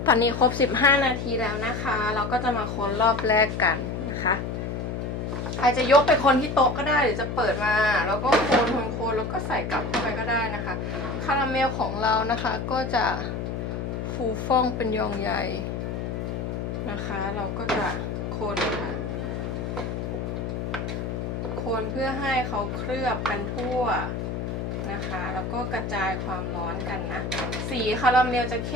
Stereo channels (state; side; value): noise; left; hum, 4 dB below the sound